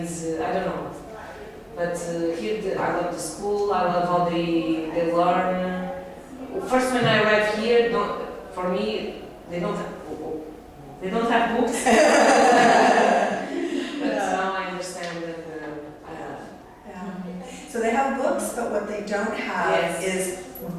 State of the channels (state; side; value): identical; both; correlation 1.00